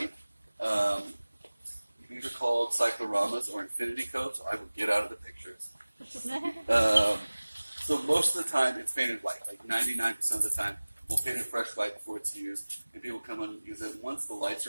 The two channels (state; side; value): inverted; both; correlation -1.00